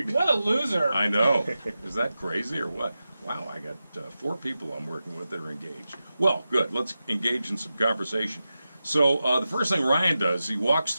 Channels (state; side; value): inverted; both; correlation -0.92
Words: What a loser. I know. Is that crazy or what? Wow, I got 4 people I'm working with that are engaged. Well, good. Let's engage in some conversation. So the first thing Ryan does, he walks